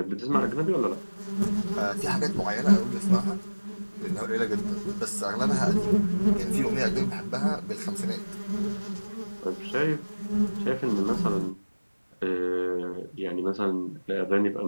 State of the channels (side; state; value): both; inverted; correlation -1.00